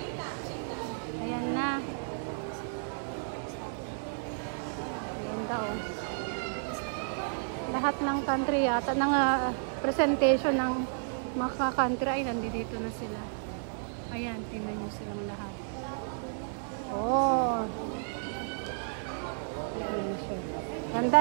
Ayan na. Ganda, oh. Lahat ng country yata, ng presentation ng mga country ay nandito na sila. Ayan, tingnan nyo silang lahat. Oh. Ayan siya. Ganda,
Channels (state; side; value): silent; left; 56 dB below the other